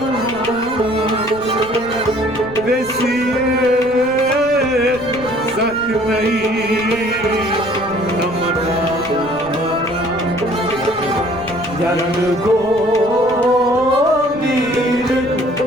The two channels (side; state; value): right; noise; rumble, 19 dB below the sound